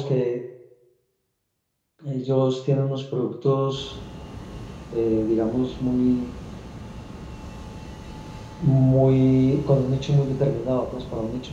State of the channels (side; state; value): both; identical; correlation 1.00